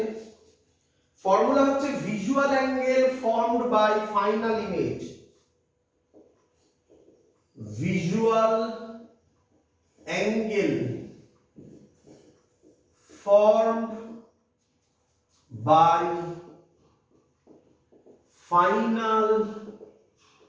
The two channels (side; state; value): both; identical; correlation 1.00